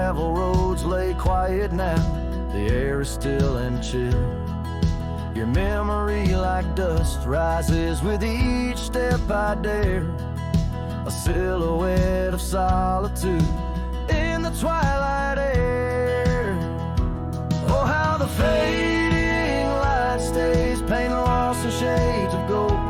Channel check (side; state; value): both; identical; correlation 1.00